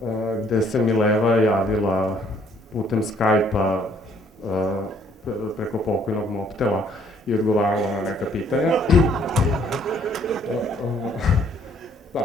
gde se Mileva javila putem Skype-a preko pokojnog Mobtela i odgovarala na neka pitanja.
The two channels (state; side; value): normal; both; correlation 0.63